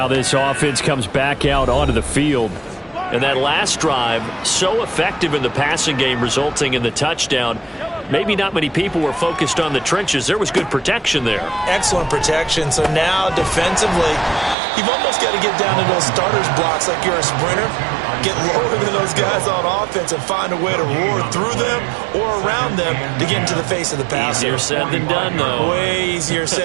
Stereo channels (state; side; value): drops out; left; at 14.6 s